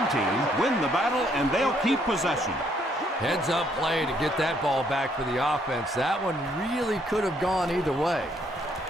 team win the battle, and they'll keep possession. Heads-up play to get that ball back for the offense. That one really could have gone either way.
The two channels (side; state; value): both; normal; correlation 0.69